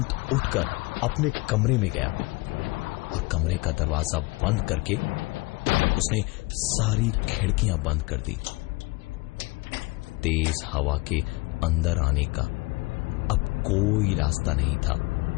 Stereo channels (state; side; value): quieter; right; 24.2 dB